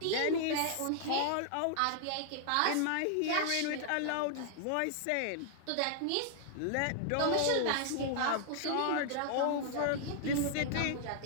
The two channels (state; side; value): different; both; correlation -0.01